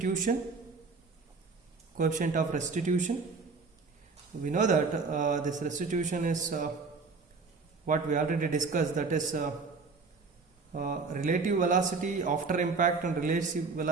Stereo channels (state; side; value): quieter; left; 4.5 dB